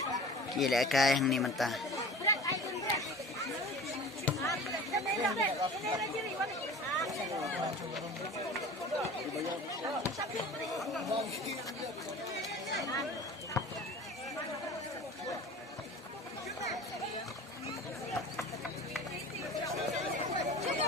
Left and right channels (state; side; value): normal; both; correlation 0.39